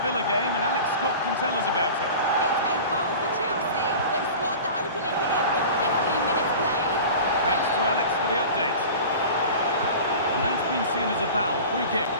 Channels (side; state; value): both; inverted; correlation -0.36